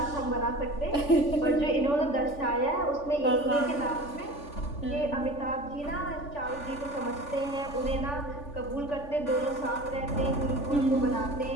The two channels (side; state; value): right; late; 3.5 ms